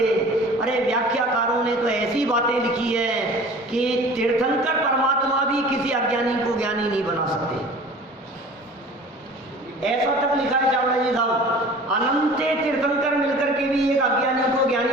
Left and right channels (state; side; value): normal; both; correlation 0.43